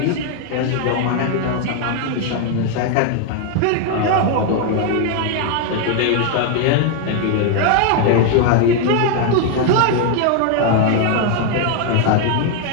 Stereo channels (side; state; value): both; different; correlation 0.00